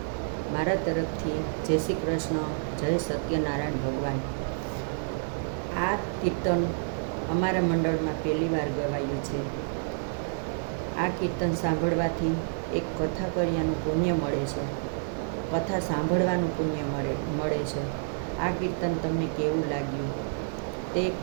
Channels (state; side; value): silent; left; digital silence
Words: મારા તરફથી જય શ્રી કૃષ્ણ, જય સત્યનારાયણ ભગવાન। આ કીર્તન અમારા મંડળમાં પહેલી વાર ગવાયું છે। આ કીર્તન સાંભળવાથી એક કથા કર્યાનું પુણ્ય મળે છે, કથા સાંભળવાનું પુણ્ય મળે છે। આ કીર્તન તમને કેવું લાગ્યું તે